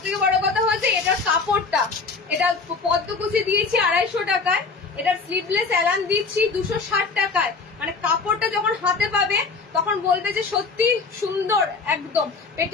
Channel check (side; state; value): right; quieter; 4.5 dB